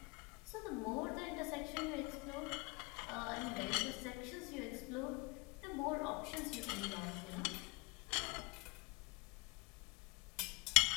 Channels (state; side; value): quieter; right; 28.4 dB